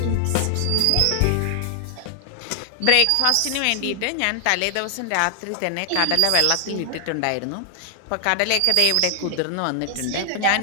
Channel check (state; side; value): different; both; correlation 0.00